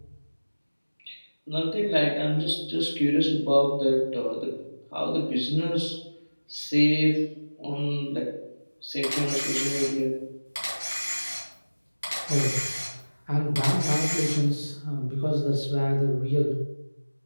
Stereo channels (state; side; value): inverted; both; correlation -1.00